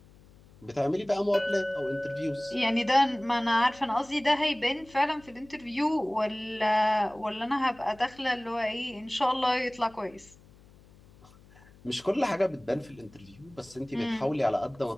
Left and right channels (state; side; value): noise; left; hum, 25 dB below the sound